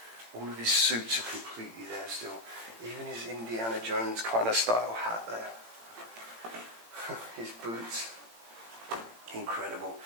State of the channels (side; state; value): left; late; 18 ms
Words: All of his suits are completely there still. Even his Indiana Jones kind of style hat there. His boots. Incredible.